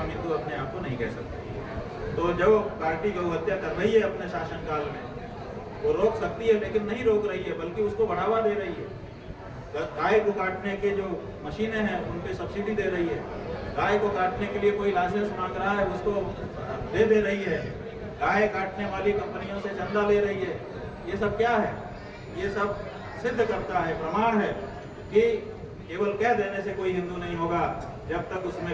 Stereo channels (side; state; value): both; identical; correlation 1.00